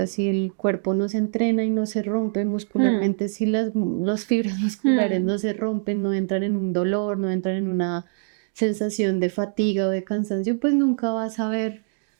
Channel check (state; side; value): silent; left; digital silence